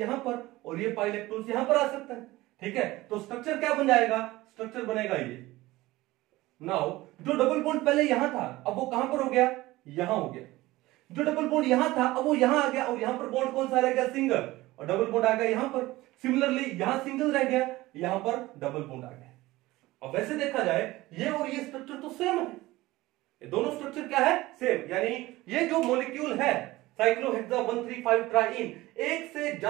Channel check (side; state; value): left; quieter; 18.6 dB